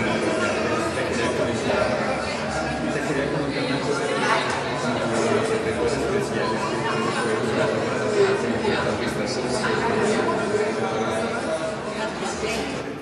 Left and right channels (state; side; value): identical; both; correlation 1.00